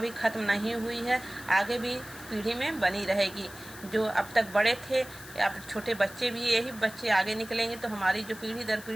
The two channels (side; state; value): left; noise; hiss, 17 dB below the sound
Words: खत्म नहीं हुई है, आगे भी पीढ़ी में बनी रहेगी। जो अब तक बड़े थे, अब छोटे बच्चे भी, यही बच्चे आगे निकलेंगे तो हमारी जो पीढ़ी दर